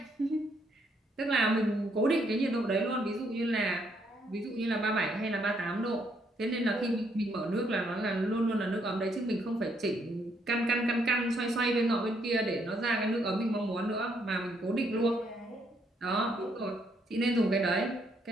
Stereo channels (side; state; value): both; normal; correlation 0.72